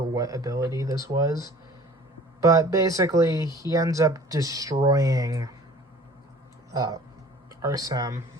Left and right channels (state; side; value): normal; both; correlation 0.48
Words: what ability this was. But basically, he ends up destroying Arsem